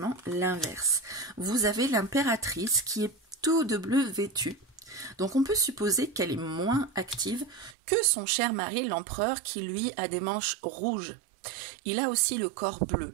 l'inverse. Vous avez l'impératrice qui est tout de bleu vêtue. Donc on peut supposer qu'elle est moins active que son cher mari, l'empereur, qui lui a des manches rouges. Il a aussi le corps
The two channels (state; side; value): drops out; left; at 7.8 s